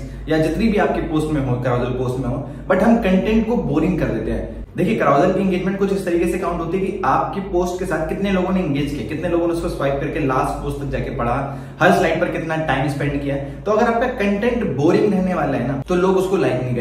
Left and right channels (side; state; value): both; identical; correlation 1.00